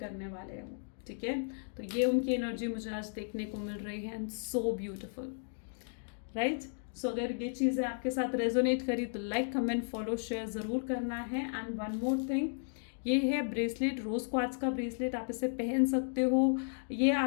वाले हैं वो। ठीक है, तो ये उनकी एनर्जी मुझे आज देखने को मिल रही है, एंड सो ब्यूटिफुल, राइट। सो अगर ये चीज़ें आपके साथ रेजोनेट करी तो लाइक, कमेंट, फॉलो, शेयर ज़रूर करना है। एंड वन मोर थिंग, ये है ब्रेसलेट, रोज़ क्वार्ट्ज का ब्रेसलेट, आप इसे पहन सकते हो। ये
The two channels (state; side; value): silent; right; digital silence